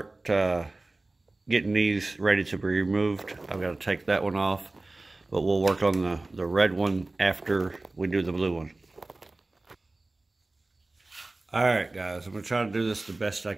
getting these ready to be removed. I've got to take that one off, but we'll work on the red one after we do the blue one. Alright guys, I'm going to try to do this the best I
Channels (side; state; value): left; quieter; 3.1 dB